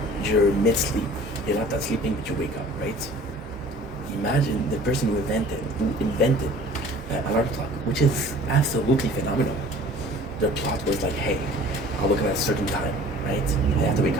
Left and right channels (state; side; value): normal; both; correlation 0.47